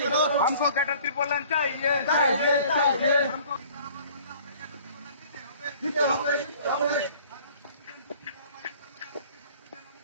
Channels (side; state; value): both; inverted; correlation -0.52